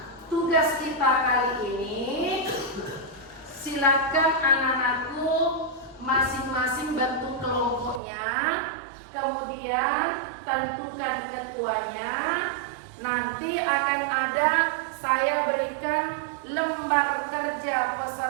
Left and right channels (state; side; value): drops out; left; at 8.0 s